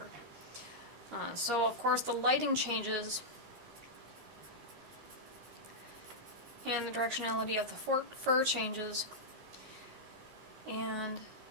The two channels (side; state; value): left; late; 13 ms